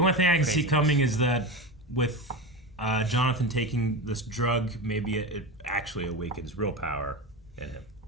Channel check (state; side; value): normal; both; correlation 0.23